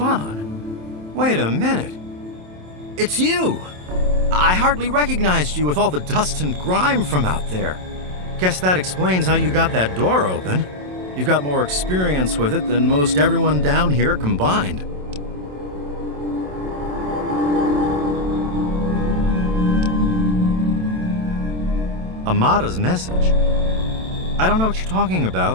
on. Wait a minute. It's you! I hardly recognized you with all the dust and grime from out there. Guess that explains how you got that door open. You've got more experience with it than most everyone down here combined. Amada's message. I don't know what you're talking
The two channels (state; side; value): late; left; 27 ms